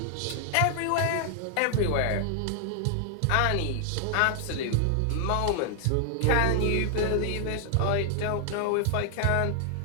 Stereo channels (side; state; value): both; different; correlation 0.00